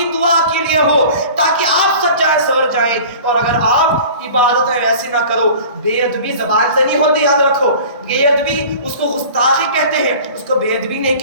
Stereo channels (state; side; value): inverted; both; correlation -0.42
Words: دعا کے لیے ہو تاکہ آپ سچ جائیں سور جائیں۔ اور اگر آپ عبادتیں ایسی نہ کرو، بے ادبی زبان سے نہیں ہوتی، یاد رکھو بے ادبی اس کو گستاخی کہتے ہیں، اس کو بے ادبی نہیں